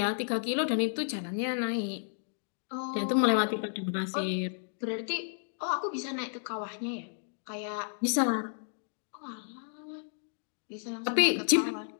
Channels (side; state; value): right; silent; digital silence